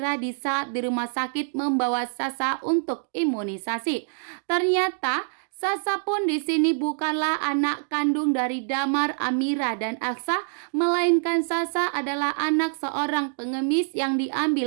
di saat di rumah sakit membawa Sasa untuk imunisasi. Ternyata Sasa pun di sini bukanlah anak kandung dari Damar, Amira, dan Aksa, melainkan Sasa adalah anak seorang pengemis yang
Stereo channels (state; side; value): silent; left; digital silence